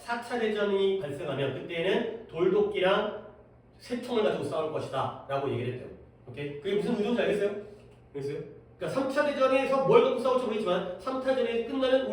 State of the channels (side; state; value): both; identical; correlation 1.00